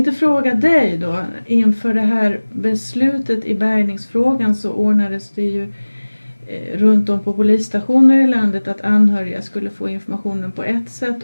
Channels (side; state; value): both; inverted; correlation -1.00